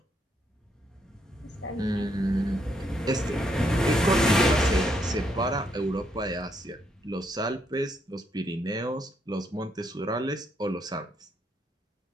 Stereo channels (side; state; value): both; normal; correlation 0.75